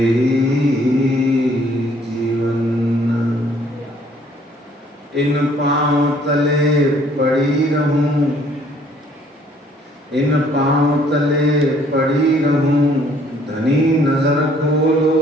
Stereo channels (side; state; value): both; normal; correlation 0.61